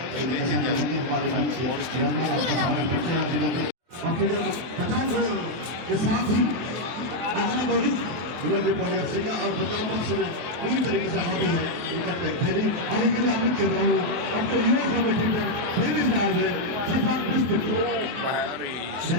हमारे बीच और फिर 50 के साथ ही FC का और 50 पक्ष में पूरी तरीके से हावी है इनका टेक्निकली आगे के लिए आमिर कर रहा हूँ। अब तो युवा कमेटी पर पहली फिलहाल है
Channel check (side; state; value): left; late; 23 ms